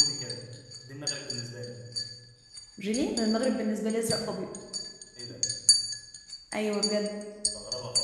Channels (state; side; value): identical; both; correlation 1.00